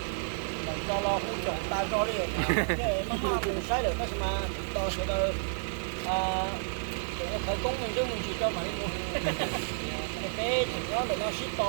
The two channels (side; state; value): left; silent; digital silence